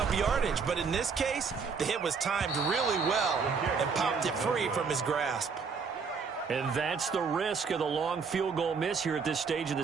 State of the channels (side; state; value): left; quieter; 5.4 dB